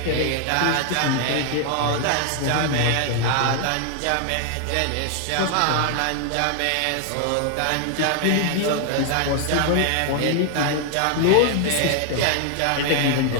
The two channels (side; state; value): both; different; correlation 0.00